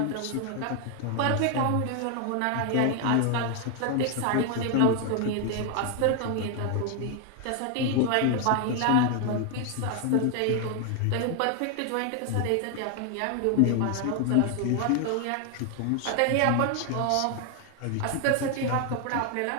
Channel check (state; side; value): different; both; correlation 0.00